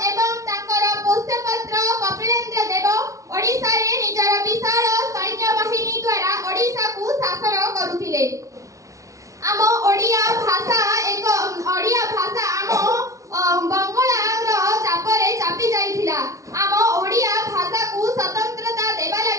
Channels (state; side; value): late; left; 0.16 ms